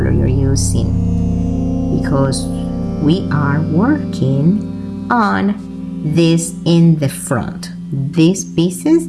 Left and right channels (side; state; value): both; identical; correlation 1.00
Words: you're using, because we are working on this in the front. These pieces